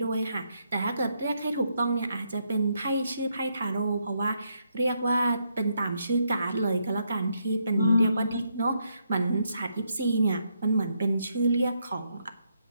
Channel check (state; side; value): inverted; both; correlation -0.77